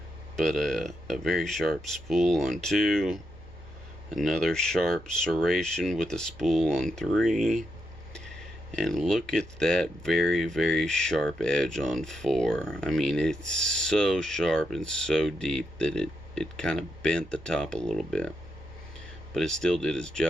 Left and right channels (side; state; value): right; noise; hum, 22 dB below the sound